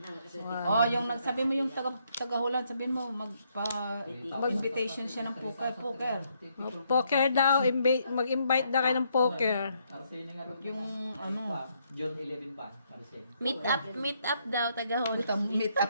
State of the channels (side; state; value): both; inverted; correlation -0.73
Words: Oh, yung nagsabi mo yung taga-Hulan, sabihin mo magpa-invitation siya ng poker. Poker daw. Mag-invite daw kayo ng poker. Yung ano, June 11 pa. Paresin. Meet up daw tagahon. meet up